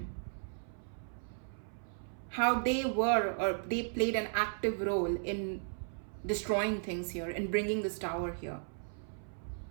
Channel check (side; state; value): left; silent; 54 dB below the other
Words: How they played an active role in destroying things here, in bringing this tower here.